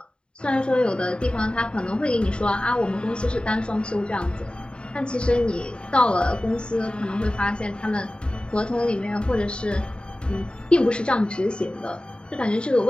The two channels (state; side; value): late; right; 0.052 ms